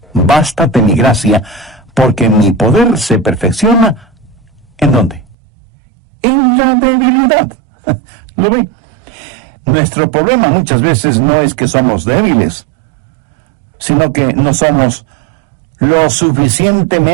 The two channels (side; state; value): left; drops out; at 5.4 s